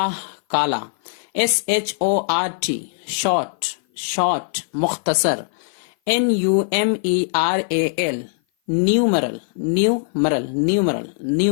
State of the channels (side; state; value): right; silent; 56 dB below the other